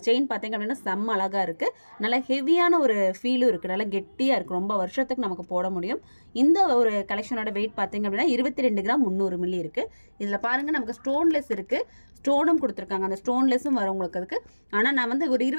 செயின் பார்த்தீங்க அப்படின்னா செம்ம அழகா இருக்கு. நல்ல ஹெவியான ஒரு ஃபீலும் இருக்கு. நல்லா கெட்டியா இருக்கு. ரொம்ப வருஷத்துக்கு நமக்கு போட முடியும். இந்த ஒரு கலெக்ஷனோட வெயிட் பார்த்தீங்க அப்படின்னா 22 கிராம் 300 மில்லி இருக்கு. இதுல பாருங்க நமக்கு ஸ்டோன்லெஸ் இருக்கு, ஸ்டோனும் கொடுத்துருக்காங்க. அந்த ஸ்டோன்லெஸும் வரும் உங்களுக்கு அதுக்கு. ஆனா நான் வந்து ஒரு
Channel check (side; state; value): both; inverted; correlation -1.00